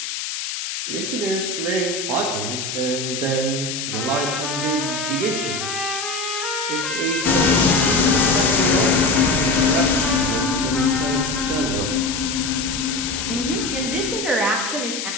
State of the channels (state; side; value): noise; left; hiss, 5 dB below the sound